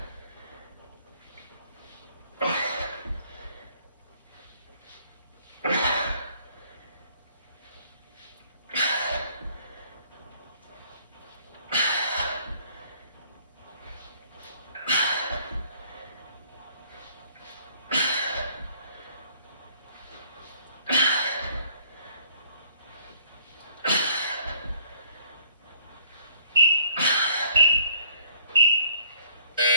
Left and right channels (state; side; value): inverted; both; correlation -0.61